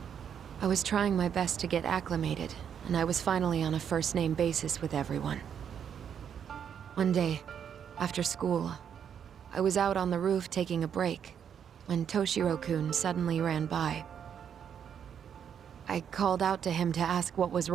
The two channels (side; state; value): left; quieter; 8.2 dB